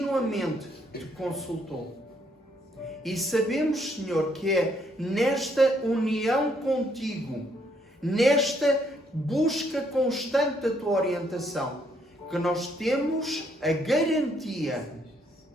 te consultou. E sabemos, Senhor, que é nesta união contigo, nesta busca constante da tua orientação, que nós temos a garantia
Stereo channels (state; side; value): normal; both; correlation 0.71